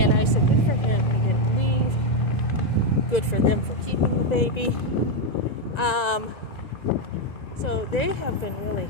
I said, good for him, he didn't leave. Good for them for keeping the baby. So they have been really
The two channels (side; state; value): right; late; 1.9 ms